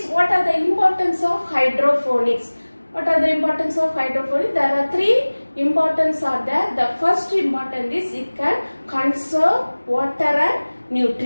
what are the importance of hydroponics? What are the importance of hydroponics? There are three importance are there. The first important is it can conserve water and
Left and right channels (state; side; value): inverted; both; correlation -1.00